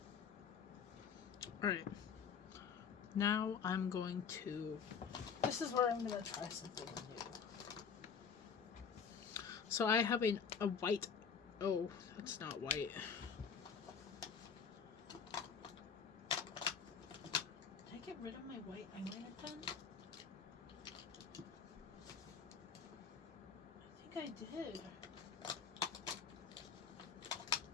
Alright. Now I'm going to... This is where I'm going to try something new. So I have a white... Oh, it's not white. Did I get rid of my white eyeliner pen? I think I did.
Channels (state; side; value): quieter; right; 6.5 dB